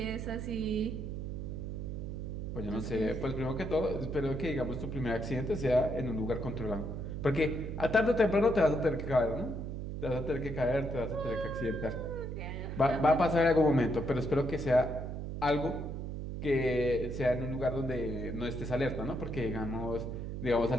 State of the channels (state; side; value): noise; right; hum, 5 dB below the sound